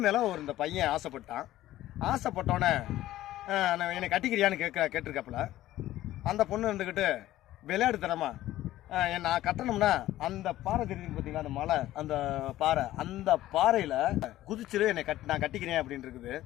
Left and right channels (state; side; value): quieter; right; 14.6 dB